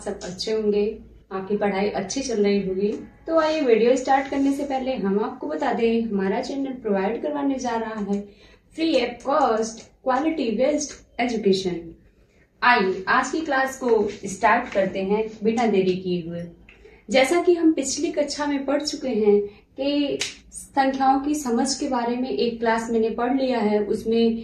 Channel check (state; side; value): identical; both; correlation 1.00